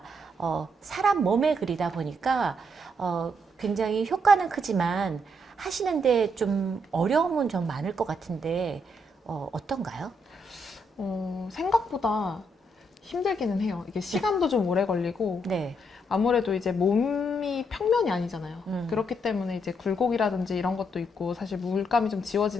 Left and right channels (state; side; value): normal; both; correlation 0.76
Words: 사람 몸에 그리다 보니까 굉장히 효과는 크지만 하시는데 좀 어려움은 좀 많을 것 같은데 어떤가요? 생각보다 힘들기는 해요. 이게 시간도 좀 오래 걸리고 네. 아무래도 이제 몸이 평면이 아니잖아요. 그렇기 때문에 이제 굴곡이라든지 이런 것도 있고 사실 물감이 좀